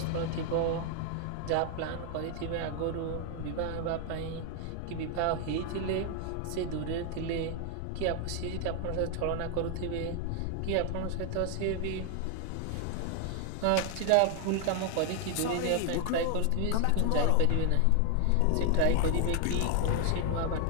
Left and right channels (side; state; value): both; different; correlation 0.00